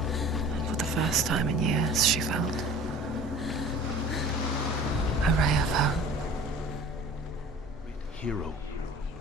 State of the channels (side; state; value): both; normal; correlation 0.44